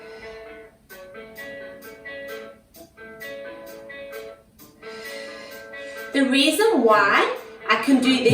The reason why I can do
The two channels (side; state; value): both; identical; correlation 1.00